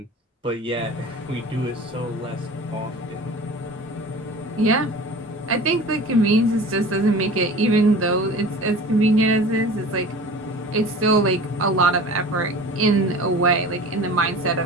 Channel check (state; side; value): normal; both; correlation 0.39